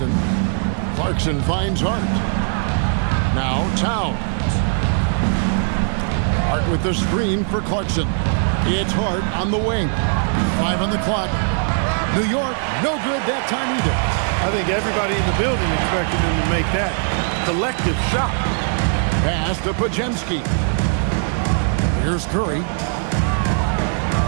Clarkson finds Hart. Now Towns. Hart with the screen for Clarkson. It's Hart on the wing. 5 on the clock. New York, no good that time either. I think everybody in the building expected him to make that collective shot. Pass to Pajemski. Here's Curry.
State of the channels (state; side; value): silent; left; 66 dB below the other